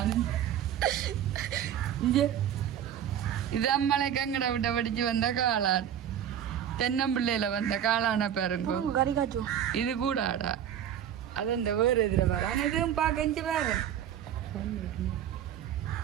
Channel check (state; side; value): quieter; left; 9.8 dB